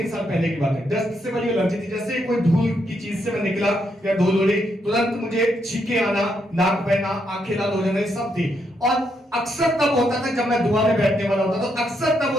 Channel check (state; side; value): normal; both; correlation 0.78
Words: साल पहले की बात है। डस्ट से बड़ी एलर्जी थी, जैसे कोई धूल की चीज से मैं निकला या धूल उड़ी तुरंत मुझे छींके आना, नाक बहना, आंखें लाल हो जाना, सब थी। और अक्सर तब होता था जब मैं दुआ में बैठने वाला होता था, अक्सर तब